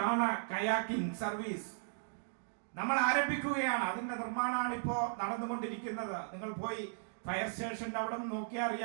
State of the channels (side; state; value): left; silent; digital silence